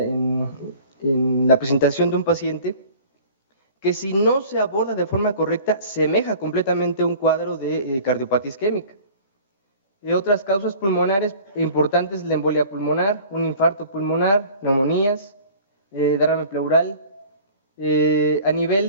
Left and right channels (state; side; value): inverted; both; correlation -0.45